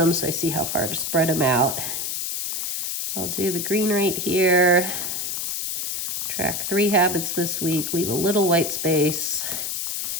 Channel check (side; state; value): left; noise; hiss, 2 dB below the sound